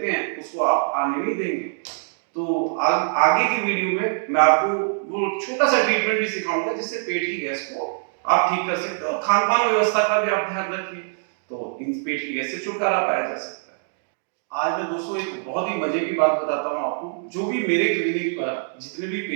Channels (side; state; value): left; silent; digital silence